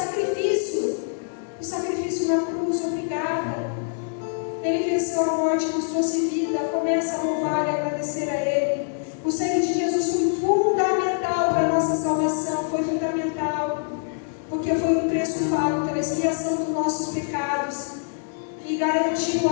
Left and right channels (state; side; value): silent; right; digital silence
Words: na cruz, obrigada. Ele venceu a morte, nos trouxe vida. Começa a louvar e agradecer a Ele. O sangue de Jesus foi fundamental para a nossa salvação, foi fundamental, porque foi um preço pago pela expiação dos nossos pecados e garantiu